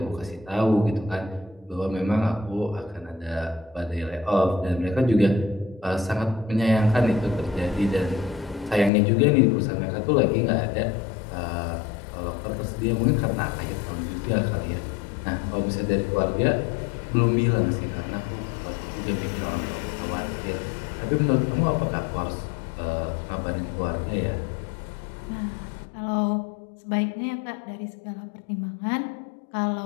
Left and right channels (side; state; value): right; drops out; at 8.9 s